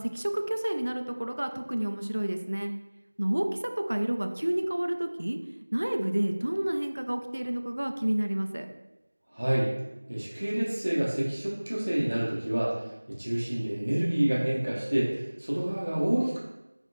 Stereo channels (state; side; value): inverted; both; correlation -1.00